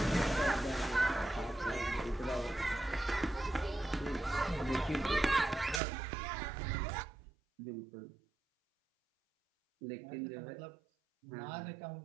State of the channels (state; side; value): drops out; left; at 5.8 s